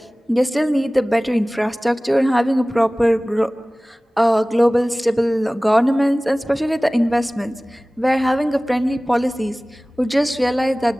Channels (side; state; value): both; normal; correlation 0.98